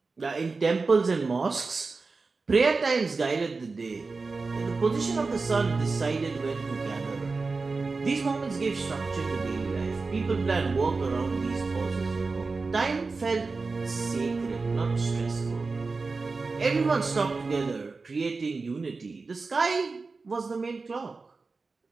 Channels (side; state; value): left; quieter; 4.1 dB